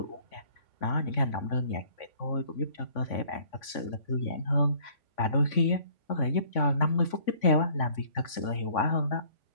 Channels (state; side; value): late; right; 3.5 ms